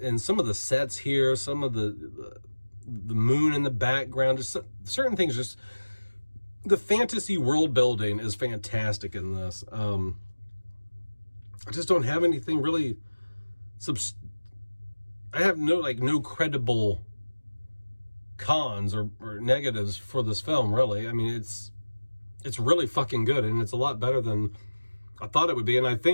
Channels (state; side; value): inverted; both; correlation -1.00